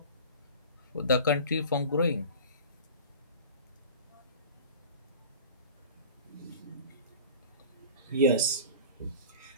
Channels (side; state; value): both; inverted; correlation -0.37